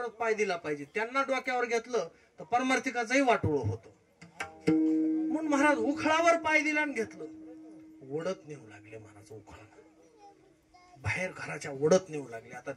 पाय दिला पाहिजे. त्यांना डोक्यावर घेतलं तर पारमार्थिकाचंही वाटोळ होतं. म्हणून महाराज उखळावर पाय दिला आणि घेतलं. ओढत नेऊ लागले महाराज उखळा, बाहेर घराच्या ओढत नेऊ लागले. आता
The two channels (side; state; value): both; identical; correlation 1.00